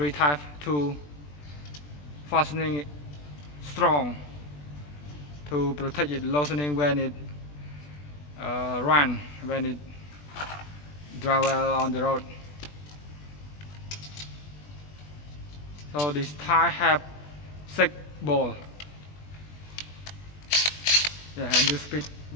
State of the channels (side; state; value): right; late; 20 ms